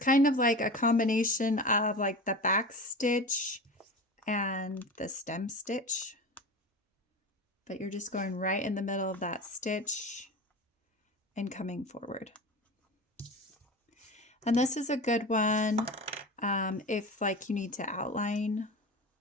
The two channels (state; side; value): normal; both; correlation 0.30